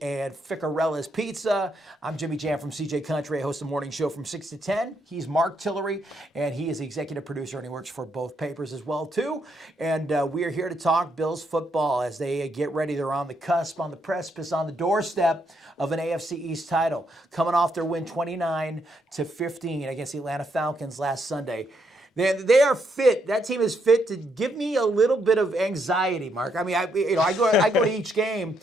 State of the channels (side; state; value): both; normal; correlation 0.76